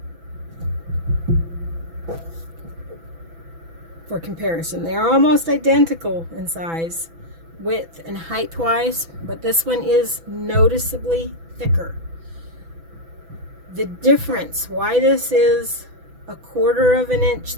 For comparison, they are almost identical in size, width and height wise, but this one is noticeably thicker. The difference, why this is 1/4 of an inch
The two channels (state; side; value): late; left; 6.0 ms